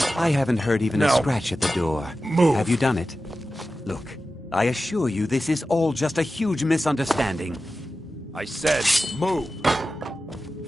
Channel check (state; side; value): normal; both; correlation 0.93